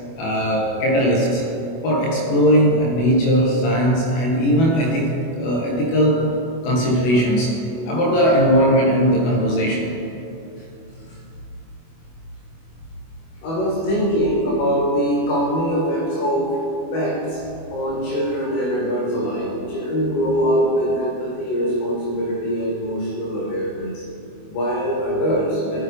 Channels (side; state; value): right; late; 24 ms